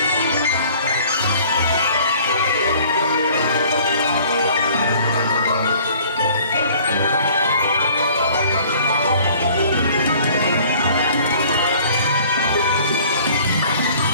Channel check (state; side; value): inverted; both; correlation -0.53